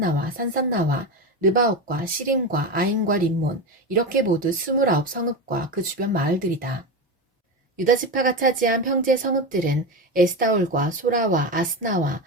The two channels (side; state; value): both; normal; correlation 0.19